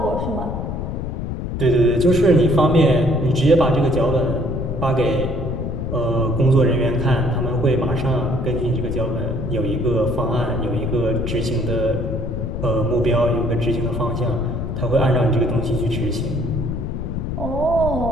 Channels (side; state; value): left; noise; rumble, 4 dB below the sound